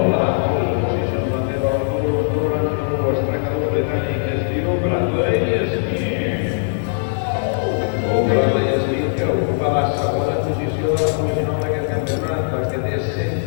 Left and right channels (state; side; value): silent; right; digital silence